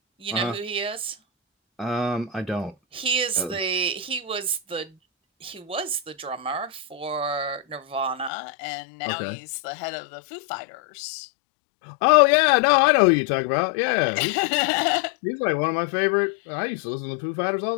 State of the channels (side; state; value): right; drops out; at 8.3 s